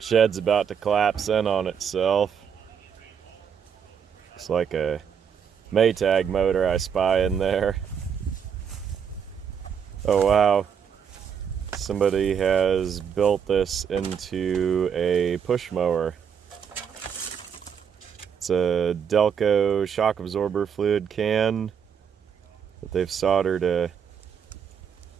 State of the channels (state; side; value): quieter; left; 7.5 dB